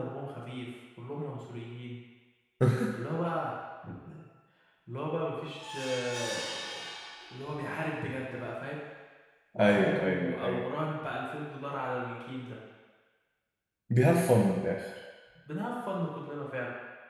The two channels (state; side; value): identical; both; correlation 1.00